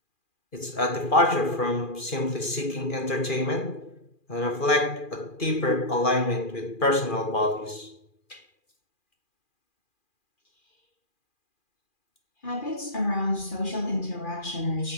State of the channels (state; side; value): late; right; 2.4 ms